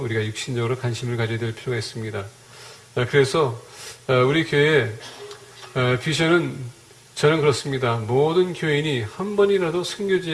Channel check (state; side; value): identical; both; correlation 1.00